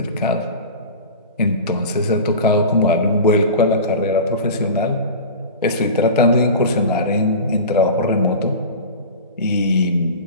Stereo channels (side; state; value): both; inverted; correlation -0.32